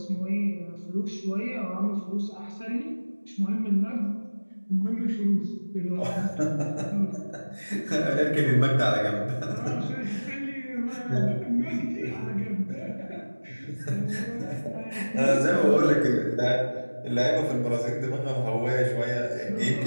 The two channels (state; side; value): inverted; both; correlation -1.00